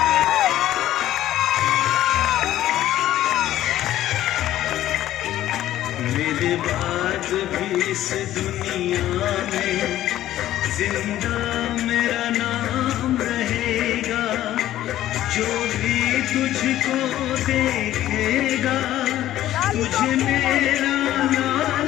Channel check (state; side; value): quieter; right; 13.4 dB